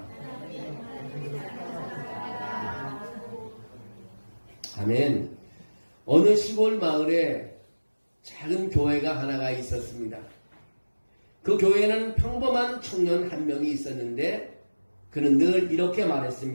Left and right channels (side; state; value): both; inverted; correlation -1.00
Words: 아멘. 어느 시골 마을에 작은 교회가 하나가 있었습니다. 그 교회에는 평범한 청년 한 명이 있었는데 그는 늘 이렇게